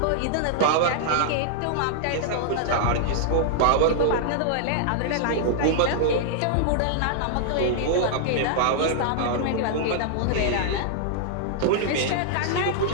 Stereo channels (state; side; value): different; both; correlation -0.01